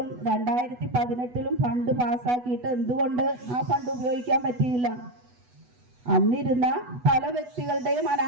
2018-ലും ഫണ്ട് പാസ്സാക്കിയിട്ട് എന്തുകൊണ്ട് ആ ഫണ്ട് ഉപയോഗിക്കാൻ പറ്റിയില്ല? അന്നിരുന്ന പല വ്യക്തികളുടെയും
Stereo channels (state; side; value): late; left; 8.1 ms